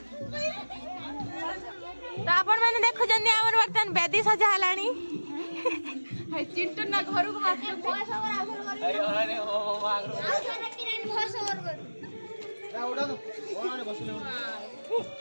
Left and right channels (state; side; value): inverted; both; correlation -1.00